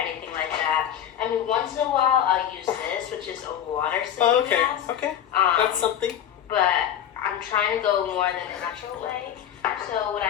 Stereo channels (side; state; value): right; quieter; 10.0 dB